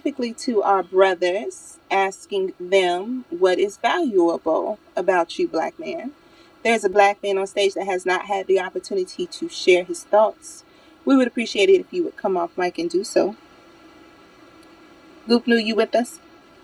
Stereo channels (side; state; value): both; identical; correlation 1.00